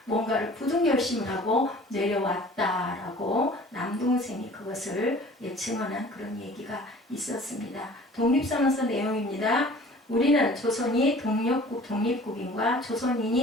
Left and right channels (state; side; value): normal; both; correlation 0.47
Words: 뭔가를 굳은 결심을 하고 내려왔다라고 남동생이 그것을 증언한 그런 얘기가 있었습니다. 독립선언서 내용입니다. 우리는 조선이 독립국인과